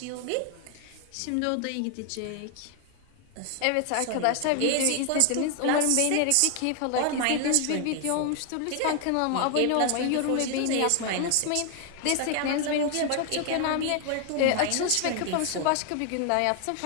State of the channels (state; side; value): different; both; correlation 0.00